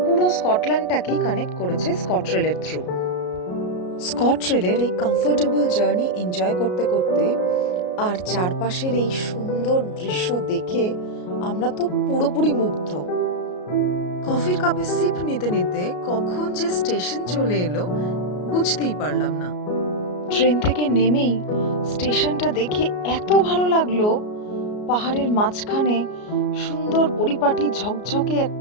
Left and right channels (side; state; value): right; late; 33 ms